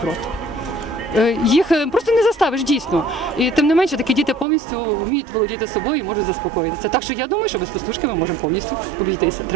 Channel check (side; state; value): left; drops out; at 4.5 s